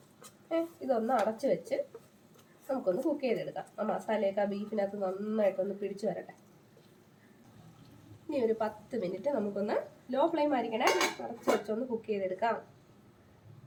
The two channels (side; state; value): both; identical; correlation 1.00